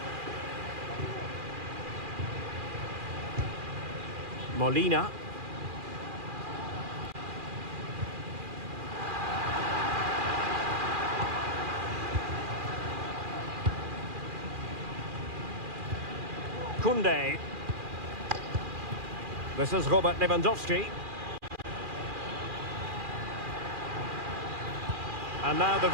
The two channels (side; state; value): left; late; 2.4 ms